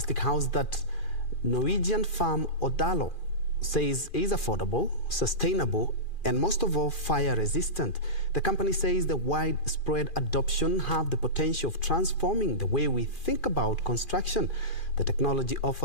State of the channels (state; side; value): late; right; 2.4 ms